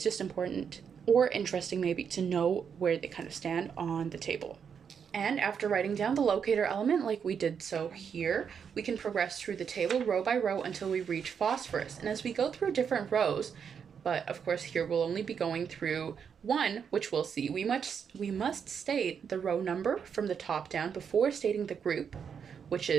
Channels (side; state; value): left; quieter; 7.1 dB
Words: just important or interesting maybe to know where they kind of stand on the table. And after writing down the locator element like we did so here, we can progress through the table row by row until we reach phosphorus. And as we go through different rows, but of course here we'll only be going through one, which we'll see, we must state the row number from the top down before stating the group, which